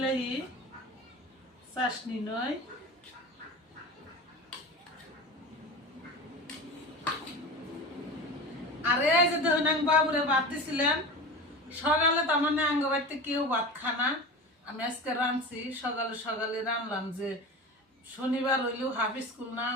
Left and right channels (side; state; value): both; normal; correlation 0.30